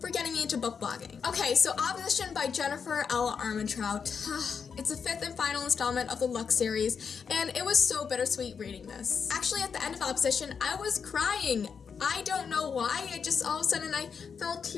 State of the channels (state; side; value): quieter; right; 6.3 dB